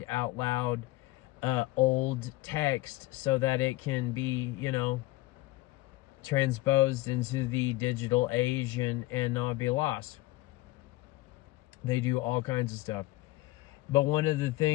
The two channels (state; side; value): quieter; right; 18.5 dB